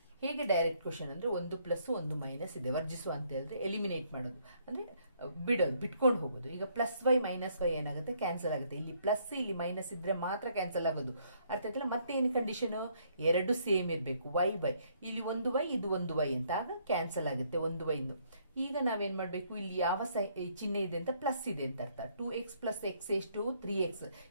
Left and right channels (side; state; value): both; inverted; correlation -0.68